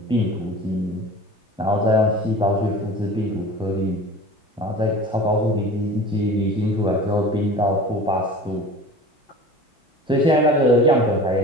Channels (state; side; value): normal; both; correlation 0.39